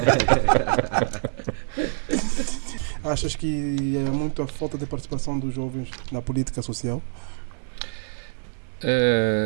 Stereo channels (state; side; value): silent; left; digital silence